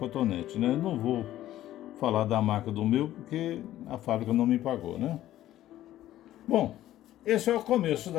né? Eu não vou falar da marca do meu, porque a fábrica não me pagou, né? Bom, esse é o começo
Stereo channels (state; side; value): quieter; right; 13.6 dB